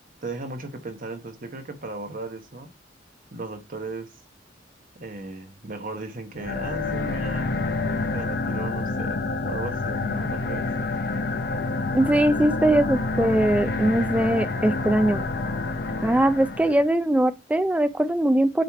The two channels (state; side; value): normal; both; correlation 0.77